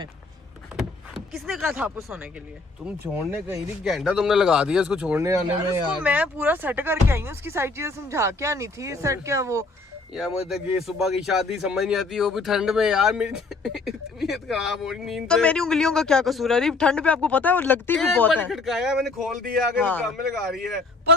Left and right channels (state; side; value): quieter; right; 3.7 dB